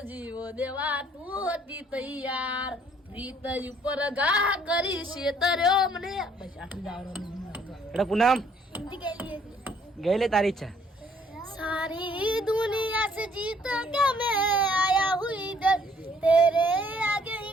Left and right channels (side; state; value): both; normal; correlation 0.63